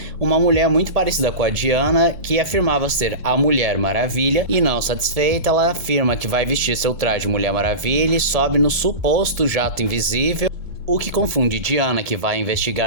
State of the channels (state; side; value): late; left; 2.2 ms